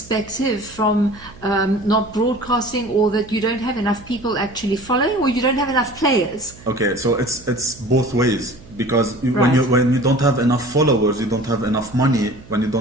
from not broadcasting, or that you don't have enough people actually following, or you don't have enough players? Okay, so it's both ways. Because when you don't have enough followers, you don't have enough money. When you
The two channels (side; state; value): right; noise; hum, 21 dB below the sound